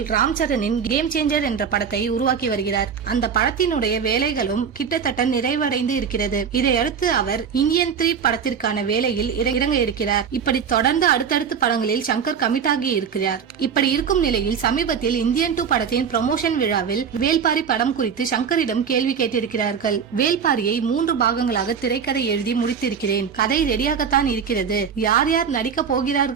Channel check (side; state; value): left; quieter; 7.0 dB